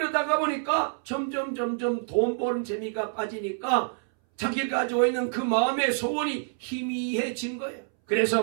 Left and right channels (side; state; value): left; silent; 60 dB below the other